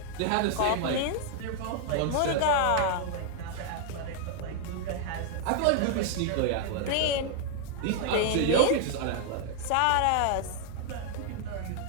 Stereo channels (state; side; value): different; both; correlation 0.00